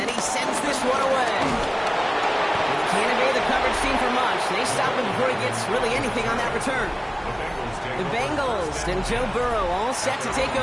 he sends this one away. He can't evade the coverage team for much. They stop him before he gets really anything on that return. The Bengals and Joe Burrow all set to take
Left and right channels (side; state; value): both; identical; correlation 1.00